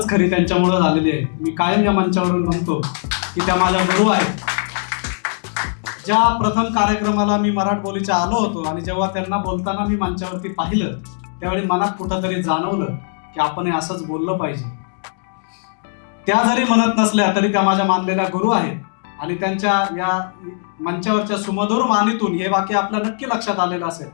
खरी त्यांच्यामुळे झालेली आहे. मी कायम या मंचावरून म्हणतो की त्या माझ्या गुरु आहेत. ज्या प्रथम कार्यक्रमाला मी मराठबोलीच्या आलो होतो आणि जेव्हा त्यांना बोलताना मी मंचावरती पाहिलं, त्यावेळी मनात कुठंतरी जाणवलं की आपण हे असंच बोललं पाहिजे. त्या जरी म्हणत नसल्या तरी त्या माझ्या मानलेल्या गुरु आहेत आणि त्यांच्या या मंचावरच्या सुमधुर वाणीतून हे वाक्य आपल्या नक्की लक्षात आलेलं असेल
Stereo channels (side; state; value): right; silent; digital silence